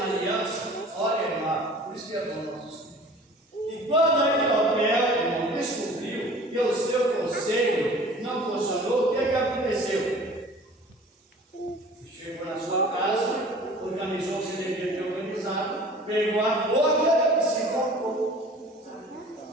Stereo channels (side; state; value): both; normal; correlation 0.46